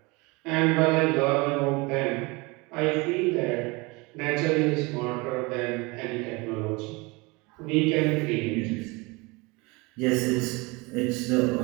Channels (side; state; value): left; quieter; 25.8 dB